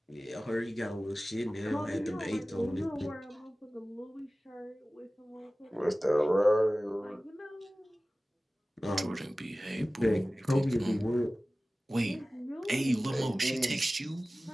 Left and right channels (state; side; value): normal; both; correlation 0.97